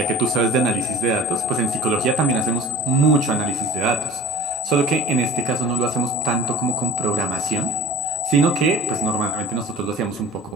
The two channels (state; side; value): normal; both; correlation 0.43